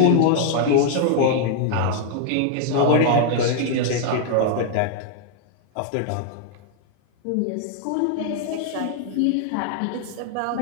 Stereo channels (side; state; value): both; different; correlation 0.00